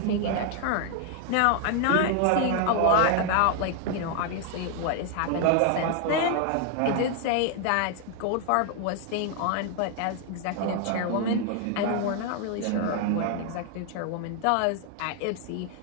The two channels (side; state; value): both; different; correlation 0.00